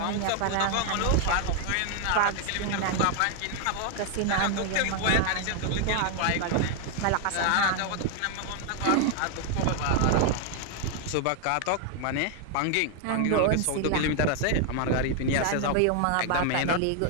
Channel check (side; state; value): both; different; correlation 0.00